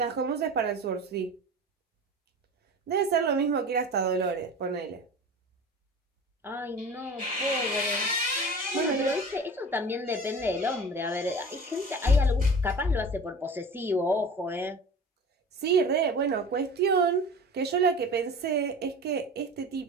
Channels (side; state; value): both; normal; correlation 0.37